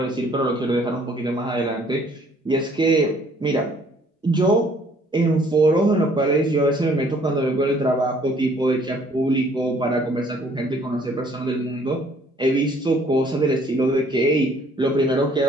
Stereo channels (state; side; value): normal; both; correlation 0.60